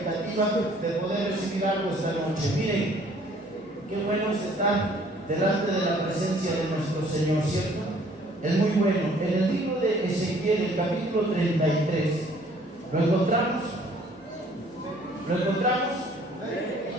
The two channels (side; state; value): both; normal; correlation 0.58